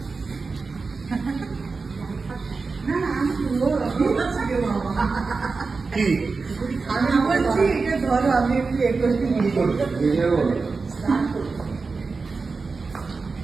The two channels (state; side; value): quieter; left; 4.3 dB